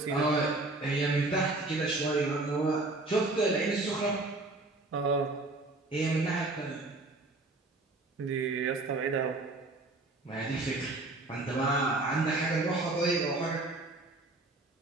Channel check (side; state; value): left; quieter; 3.0 dB